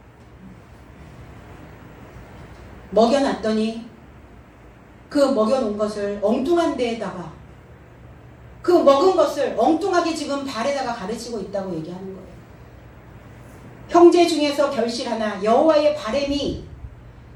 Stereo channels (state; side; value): identical; both; correlation 1.00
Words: 먹여놨더니 그 먹여놓은 것을 엉뚱한 데에다가 그 먹은 것을 엉뚱하게 지금 발에다가 가르치고 있다고 얘기하는 거예요. 형제 중에서 결실하나 여호와의 바램이